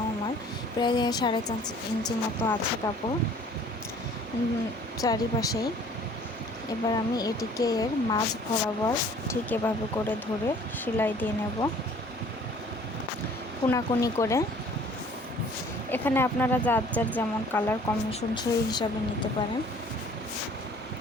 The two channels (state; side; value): normal; both; correlation 0.53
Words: আমার প্রায় 4.5 ইঞ্চি মতো আছে কাপড় চারিপাশেই। এবার আমি এটিকে এর মাঝ বরাবর ঠিক এভাবে করে ধরে সেলাই দিয়ে নেব কোনাকুনি করে। এখানে আপনারা যার যার যেমন কালার কম্বিনেশন সেই হিসাবে নিতে পারেন।